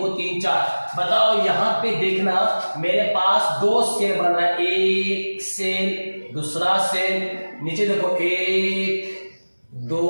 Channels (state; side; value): inverted; both; correlation -1.00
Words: 3 4। बताओ यहाँ पे देखना मेरे पास 2 सेल बन रहा है। एक सेल, दूसरा सेल, नीचे देखो 1 2